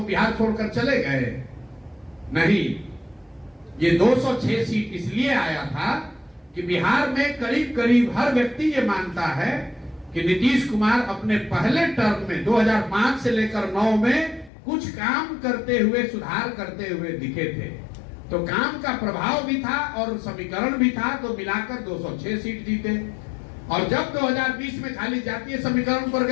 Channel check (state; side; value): drops out; right; at 14.5 s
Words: बिहार छोड़कर चले गए? नहीं, ये 206 सीट इसलिए आया था कि बिहार में करीब करीब हर व्यक्ति ये मानता है कि नीतीश कुमार अपने पहले टर्म में 2005 से लेकर 9 में कुछ काम करते हुए, सुधार करते हुए दिखे थे। तो काम का प्रभाव भी था और समीकरण भी था, तो मिलाकर 206 सीट जीते। और जब 2020 में खाली जातीय समीकरण पर